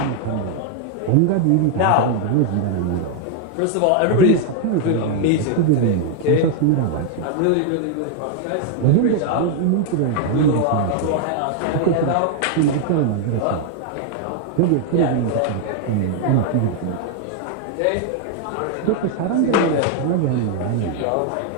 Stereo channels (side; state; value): both; different; correlation 0.00